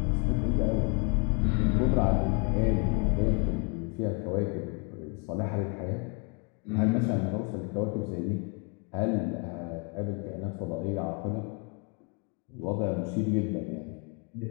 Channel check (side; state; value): right; quieter; 34.2 dB